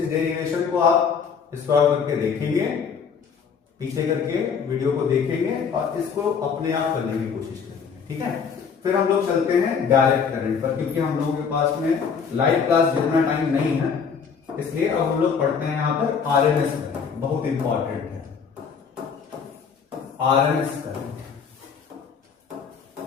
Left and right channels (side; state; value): right; quieter; 6.3 dB